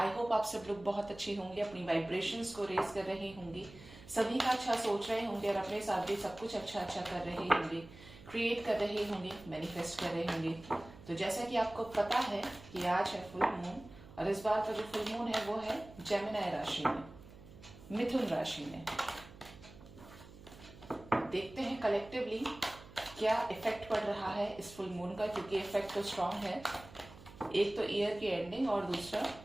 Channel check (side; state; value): right; noise; hum, 18 dB below the sound